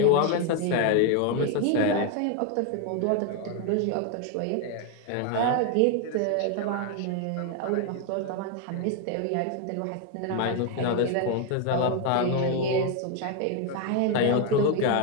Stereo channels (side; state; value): both; different; correlation 0.01